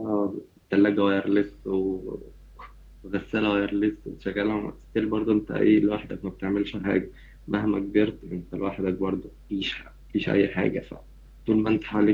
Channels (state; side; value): identical; both; correlation 1.00